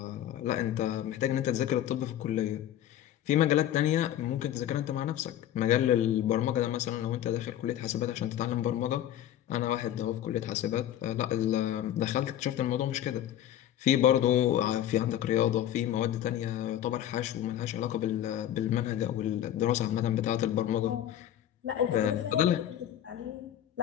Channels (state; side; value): quieter; right; 11.5 dB